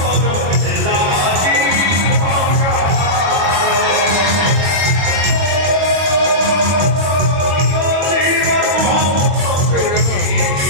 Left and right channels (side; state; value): left; late; 21 ms